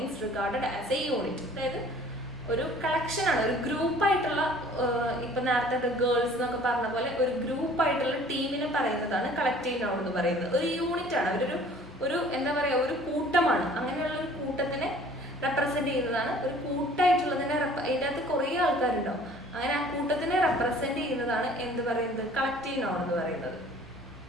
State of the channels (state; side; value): normal; both; correlation 0.52